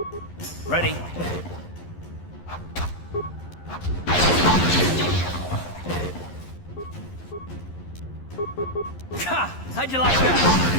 Ready. Ha! How'd you like that?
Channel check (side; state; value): right; late; 11 ms